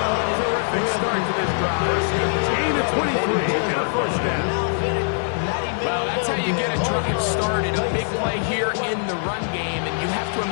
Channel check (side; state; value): right; silent; digital silence